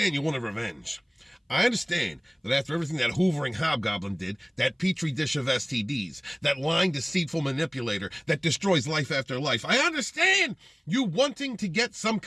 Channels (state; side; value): identical; both; correlation 1.00